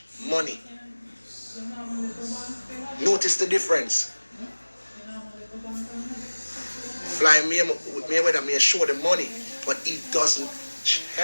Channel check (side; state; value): both; inverted; correlation -1.00